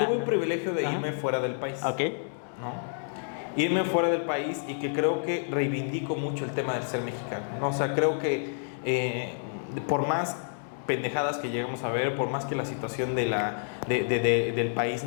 tuve un privilegio de irme fuera del país. Ok. ¿No? Irme fuera del país, y que creo que reivindico mucho el tema del ser mexicano, ¿no? O sea, creo que por más pendejadas que llegamos a ver, por más que la situación del país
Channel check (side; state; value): right; silent; digital silence